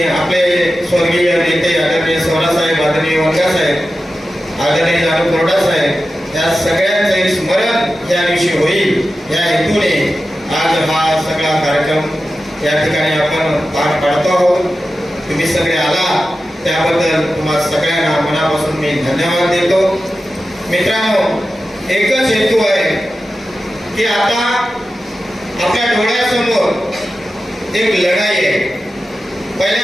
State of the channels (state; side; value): normal; both; correlation 0.93